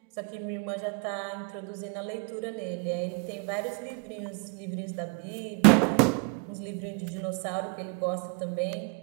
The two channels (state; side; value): quieter; left; 32.7 dB